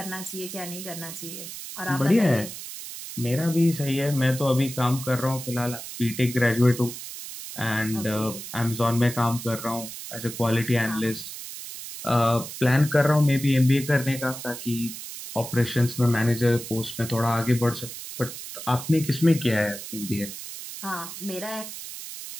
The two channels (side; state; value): right; noise; hiss, 10 dB below the sound